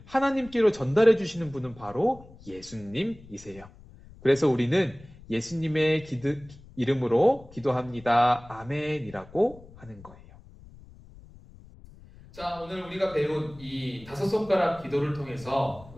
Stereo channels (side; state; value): left; noise; rumble, 21 dB below the sound